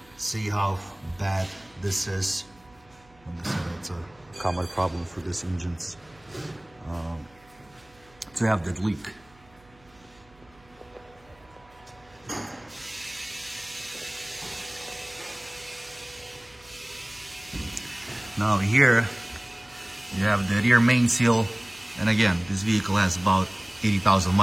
See how bad this is. Like I said, it's a common problem for these engines to have that leak. Now here you have the rear main seal, and again, this vehicle has about 80,000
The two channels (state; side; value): noise; right; hum, 29 dB below the sound